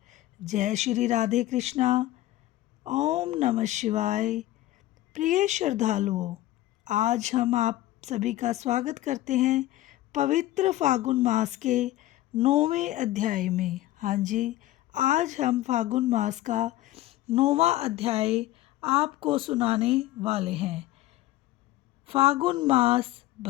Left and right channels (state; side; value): quieter; right; 15.5 dB